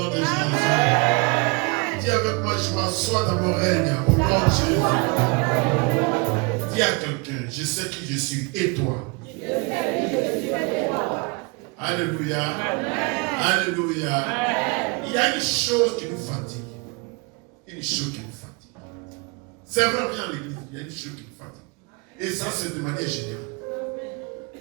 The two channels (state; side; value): quieter; left; 29.8 dB